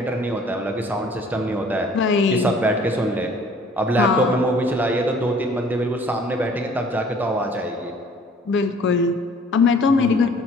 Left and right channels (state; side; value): normal; both; correlation 0.54